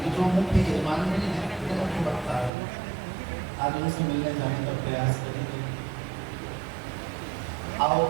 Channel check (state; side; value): drops out; left; at 2.5 s